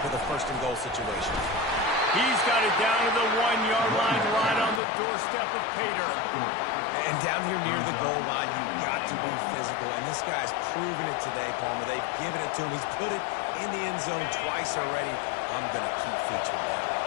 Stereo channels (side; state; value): right; drops out; at 4.8 s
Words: with a 1st and goal situation. He's got it down to the 1-yard line, right on the doorstep of Pater. And down here near the goal line, you've got to be physical. And this guy's proven it today, Palmer. They've given it to him. He's put it in the end zone twice already. I'm going to keep featuring that.